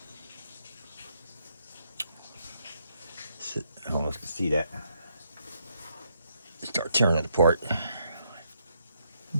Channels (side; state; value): both; inverted; correlation -0.75